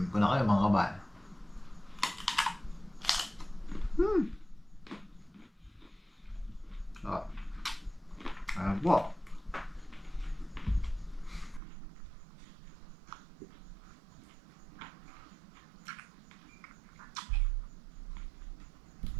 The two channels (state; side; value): drops out; left; at 11.6 s